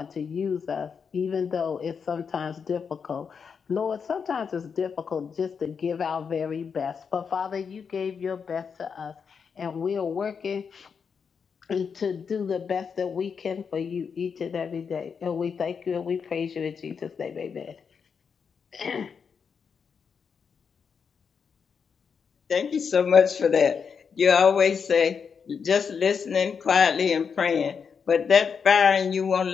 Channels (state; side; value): quieter; right; 6.2 dB